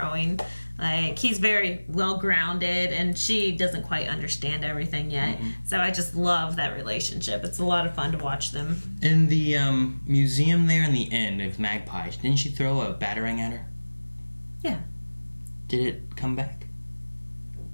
Like, he's very well grounded, and she doesn't quite understand everything yet. So I just love that relationship. It's a lot of fun to watch them. In the museum there in the end of Magpie, didn't she throw a batarang at her? Yeah. Did it come back?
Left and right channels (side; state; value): both; inverted; correlation -1.00